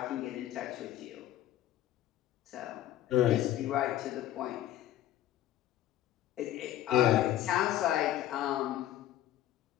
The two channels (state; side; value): quieter; right; 12.9 dB